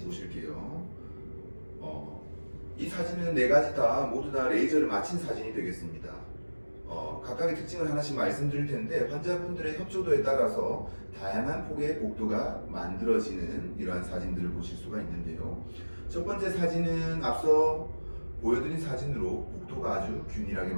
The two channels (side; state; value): both; inverted; correlation -1.00